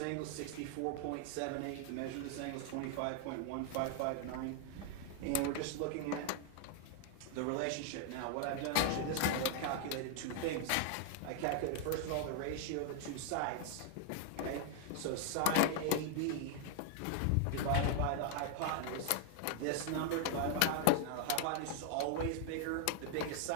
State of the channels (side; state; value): both; different; correlation 0.00